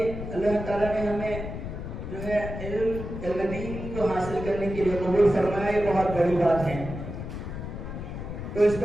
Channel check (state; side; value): noise; left; rumble, 7 dB below the sound